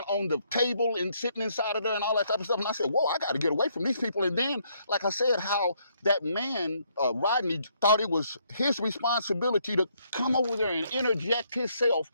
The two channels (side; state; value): both; inverted; correlation -0.71